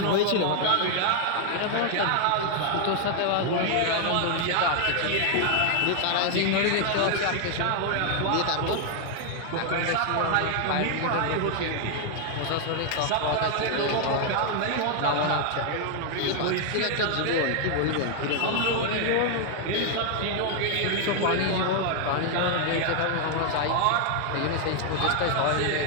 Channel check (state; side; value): different; both; correlation 0.00